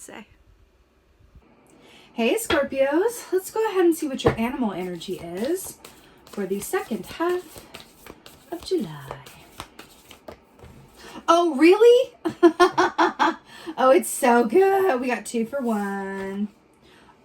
say. Hey Scorpios, let's go ahead and see what your animal energy is for the second half of July. Oh, really? Oh, it's so good. We got 2 for 1.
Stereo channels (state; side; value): identical; both; correlation 1.00